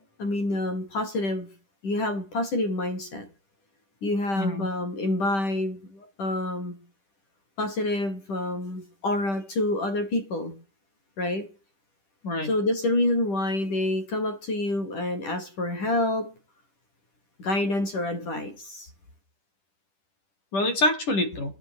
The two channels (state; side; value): late; right; 10 ms